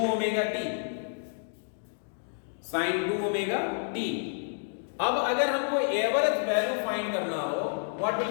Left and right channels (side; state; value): right; silent; digital silence